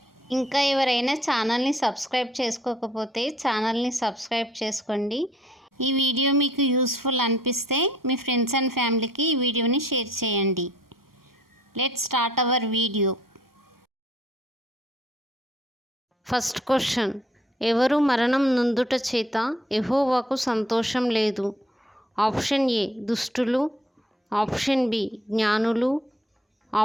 ఇంకా ఎవరైనా ఛానల్ని సబ్స్క్రైబ్ చేసుకోకపోతే ఛానల్ని సబ్స్క్రైబ్ చేసుకోండి. ఈ వీడియో మీకు యూస్ఫుల్ అనిపిస్తే మీ ఫ్రెండ్స్ అండ్ ఫ్యామిలీకి ఈ వీడియోని షేర్ చేయండి. Let's start our video. First question, ఎవరు మరణం నొందుట చేత యెహోవాకు సంతోషం లేదు? ఆప్షన్ ఏ దుష్టులు, ఆప్షన్ బి జ్ఞానులు,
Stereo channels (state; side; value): normal; both; correlation 0.61